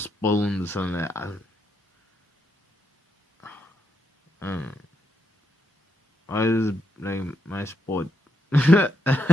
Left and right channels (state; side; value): normal; both; correlation 0.80